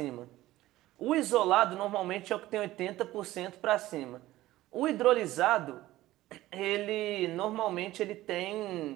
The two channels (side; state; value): left; quieter; 16.2 dB